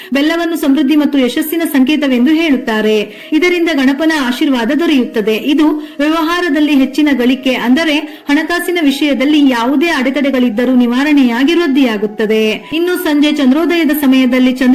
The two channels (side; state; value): both; identical; correlation 1.00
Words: ಬೆಲ್ಲವನ್ನು ಸಮೃದ್ಧಿ ಮತ್ತು ಯಶಸ್ಸಿನ ಸಂಕೇತವೆಂದು ಹೇಳುತ್ತಾರೆ. ಇದರಿಂದ ಗಣಪನ ಆಶೀರ್ವಾದ ದೊರೆಯುತ್ತದೆ. ಇದು ವ್ಯವಹಾರದಲ್ಲಿ ಹೆಚ್ಚಿನ ಗಳಿಕೆ ಅಂದರೆ ಹಣಕಾಸಿನ ವಿಷಯದಲ್ಲಿ ಯಾವುದೇ ಅಡೆತಡೆಗಳಿದ್ದರೂ ನಿವಾರಣೆಯಾಗಿ ವೃದ್ಧಿಯಾಗುತ್ತದೆ. ಇನ್ನು ಸಂಜೆ ಚಂದ್ರೋದಯದ ಸಮಯದಲ್ಲಿ